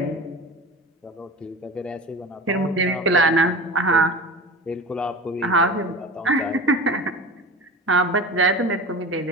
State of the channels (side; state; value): both; normal; correlation 0.33